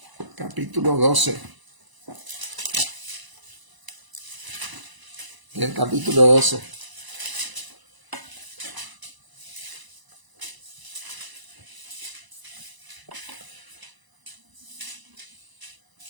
12. En el capítulo 12.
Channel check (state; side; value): late; left; 1.0 ms